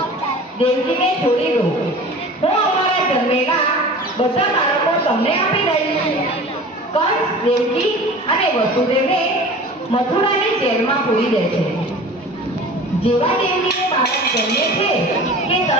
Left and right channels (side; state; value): both; normal; correlation 0.40